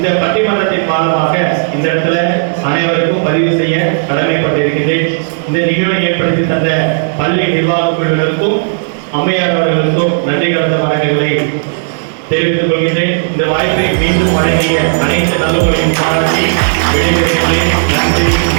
பட்டிமன்றத்தின் மூலமாக இந்த இடத்துல அனைவருக்கும் பதிவு செய்ய கடமைப்பட்டிருக்கின்றேன். இந்த நிகழ்வை ஏற்படுத்தி தந்த பள்ளி நிர்வாக குழுவினருக்கும் அம்மையார் அவர்களுக்கும் நன்றி கலந்த வணக்கங்களை தெரிவித்துக் கொள்கின்றேன். இந்த வாய்ப்பை மீண்டும் வழங்கிய அனைத்து நல்லவர்களையும் பாராட்டி விடைபெறுகிறேன். நன்றி,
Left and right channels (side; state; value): left; silent; digital silence